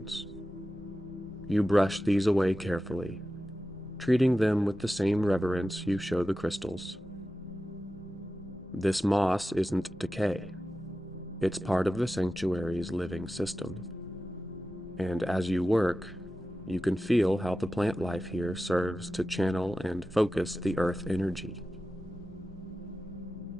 You brush these away carefully, treating them with the same reverence you show the crystals. This moss isn't decay. It's part of the sanctuary's living system. And as you work, you can feel how the plant life here serves to channel and focus the earth energy.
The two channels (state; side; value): normal; both; correlation 0.94